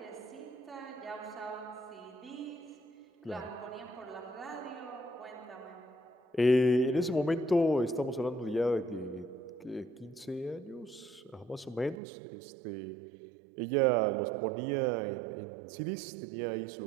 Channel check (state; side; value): drops out; left; at 12.0 s